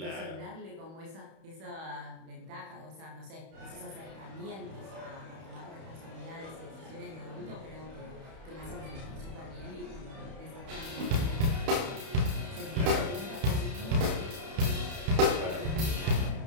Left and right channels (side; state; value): left; late; 31 ms